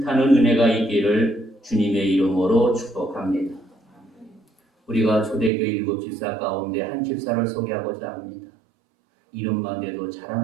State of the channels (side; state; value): left; drops out; at 5.5 s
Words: 은혜가 있기를 주님의 이름으로 축복합니다. 우리가 초대교회 7집사 가운데 한 집사를 소개하고자 합니다. 이름만 대도